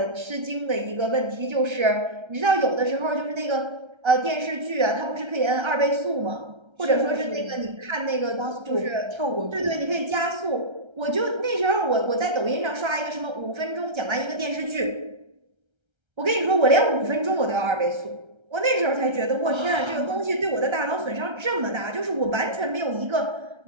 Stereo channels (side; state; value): left; late; 1.3 ms